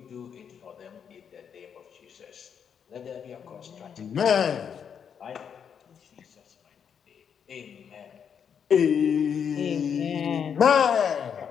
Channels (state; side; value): quieter; right; 7.5 dB